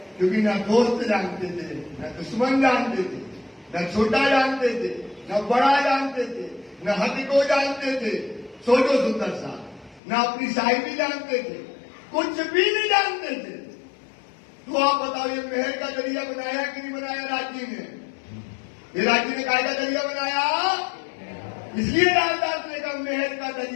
क्योंकि ना दोस्त जानते थे, न दुश्मन जानते थे, न छोटा जानते थे, न बड़ा जानते थे, न हद को जानते थे। सोचो सुंदर सा, न अपनी साहिबी जानते थे, कुछ भी नहीं जानते थे। तो आप बताओ, ये महल का दरिया बनाया कि नहीं बनाया राज्य ने? ये राज्य ने काय का दरिया बनाया? इसलिए रामदास ने कहा महल का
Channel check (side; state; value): right; drops out; at 10.0 s